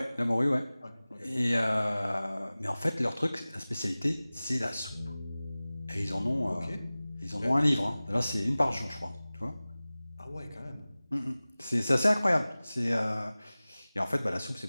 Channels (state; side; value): inverted; both; correlation -0.98